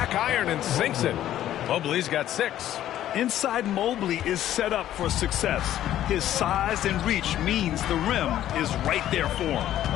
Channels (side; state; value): right; quieter; 12.3 dB